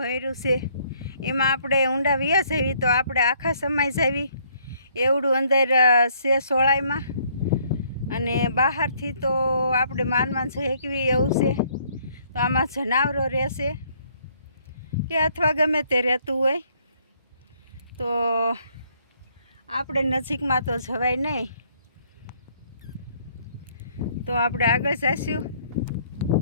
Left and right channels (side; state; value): both; inverted; correlation -0.65